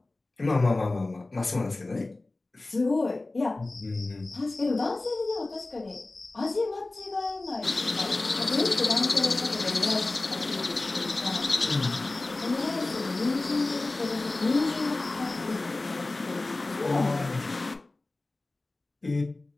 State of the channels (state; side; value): quieter; right; 3.1 dB